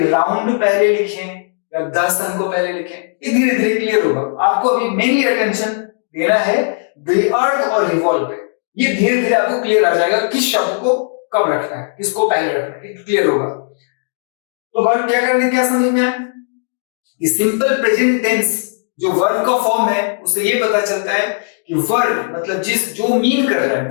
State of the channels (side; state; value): right; silent; digital silence